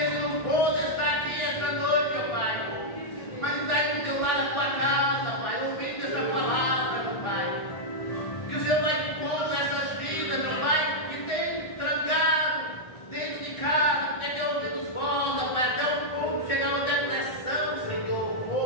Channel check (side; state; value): right; late; 1.4 ms